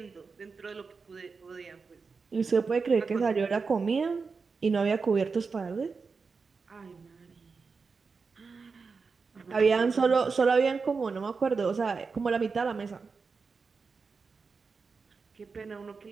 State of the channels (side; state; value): left; quieter; 4.8 dB